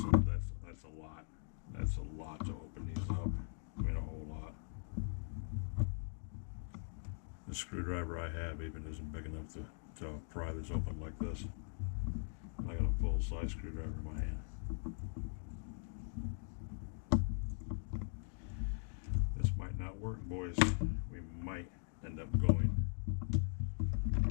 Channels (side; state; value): right; silent; digital silence